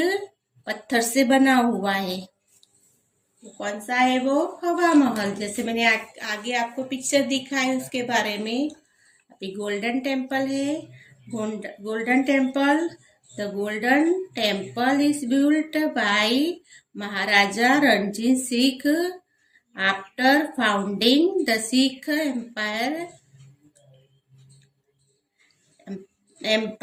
पत्थर से बना हुआ है। कौन सा है वो? हवा महल। जैसे मैंने आगे आपको पिक्चर दिखा है उसके बारे में। अभी गोल्डन टेम्पल है। Golden temple, the golden temple is built by Maharaja Ranjit Singh after founding the Sikh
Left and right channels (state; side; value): identical; both; correlation 1.00